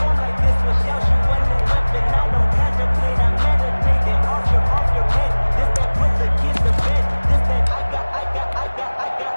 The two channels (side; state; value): both; inverted; correlation -1.00